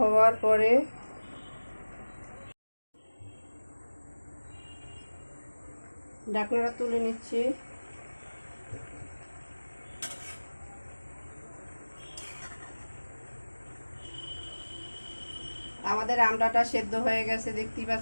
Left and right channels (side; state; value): both; inverted; correlation -1.00